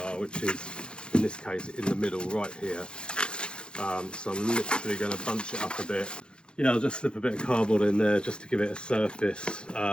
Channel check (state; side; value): late; right; 0.052 ms